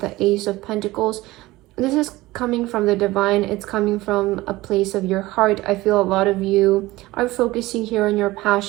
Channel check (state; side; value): quieter; left; 18.9 dB